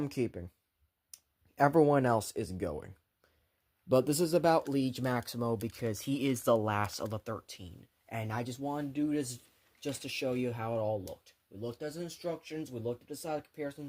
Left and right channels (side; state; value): both; identical; correlation 1.00